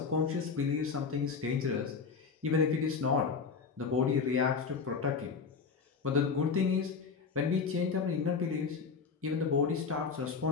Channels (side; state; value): right; quieter; 5.4 dB